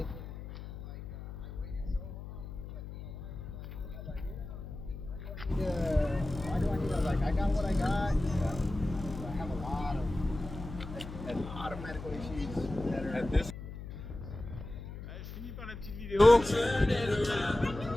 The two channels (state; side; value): noise; left; hum, 10 dB below the sound